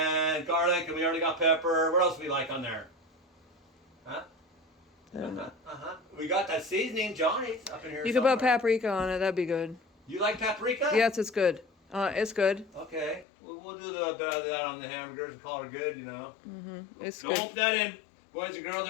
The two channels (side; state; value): right; drops out; at 13.2 s